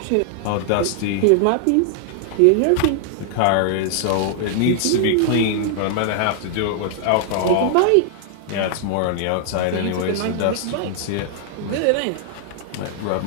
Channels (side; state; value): both; different; correlation 0.00